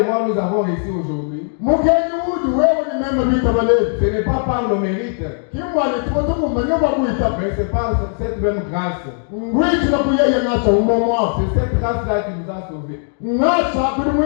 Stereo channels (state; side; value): silent; right; 61 dB below the other